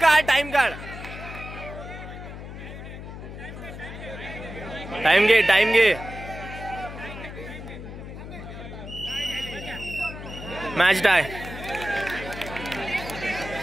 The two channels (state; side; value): noise; left; hum, 11 dB below the sound